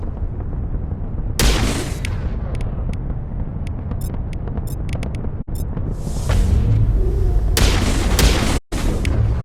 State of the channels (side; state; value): both; identical; correlation 1.00